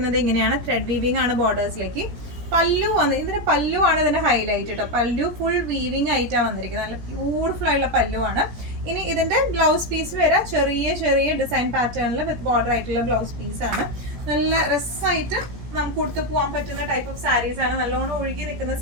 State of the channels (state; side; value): late; left; 17 ms